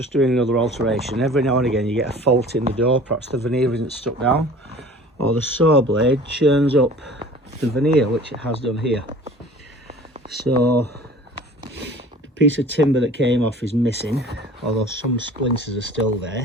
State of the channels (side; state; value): both; normal; correlation 0.45